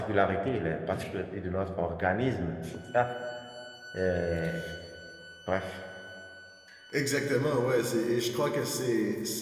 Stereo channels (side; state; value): both; identical; correlation 1.00